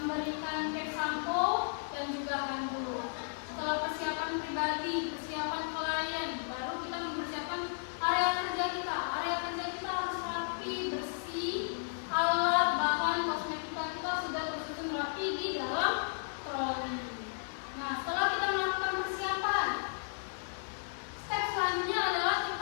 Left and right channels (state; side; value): silent; right; digital silence